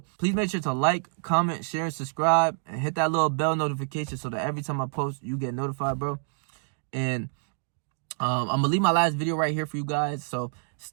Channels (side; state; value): left; silent; digital silence